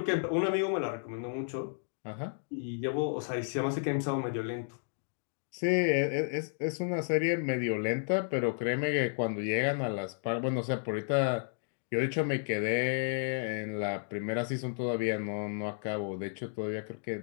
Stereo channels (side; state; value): right; silent; digital silence